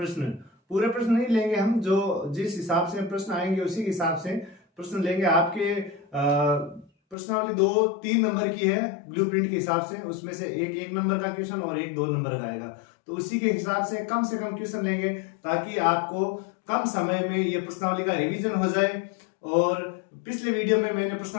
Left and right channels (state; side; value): drops out; right; at 7.2 s